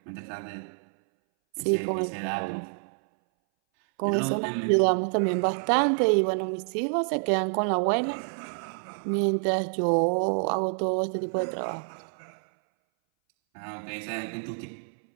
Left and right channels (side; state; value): left; silent; 60 dB below the other